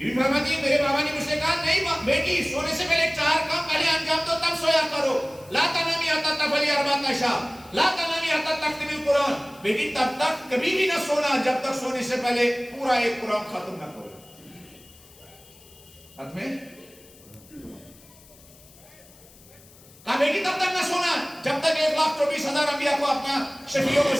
بی فرماتی ہے میرے بابا نے مجھ سے کہا نہیں بیٹی سونے سے پہلے 4 کام پہلے انجام دو تب سویا کرو. لا تنامی حتی تفعلی اربعۃ اشیاء, لا تنامی حتی تختمی القرآن, بیٹی تب تک کبھی بھی نہ سونا جب تک سونے سے پہلے پورا ایک قرآن ختم نہ کرو. ختم ہے. کہا بیٹی تب تک نہ سونا جب تک 1,24,000 انبیاء کو اپنا شفیع و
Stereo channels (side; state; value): left; noise; hiss, 24 dB below the sound